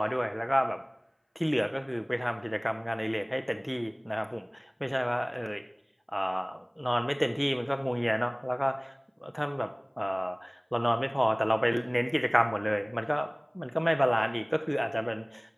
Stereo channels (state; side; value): identical; both; correlation 1.00